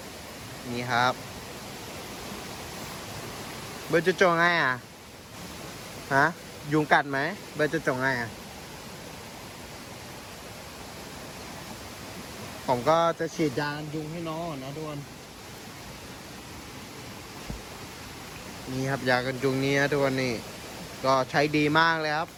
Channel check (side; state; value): both; identical; correlation 1.00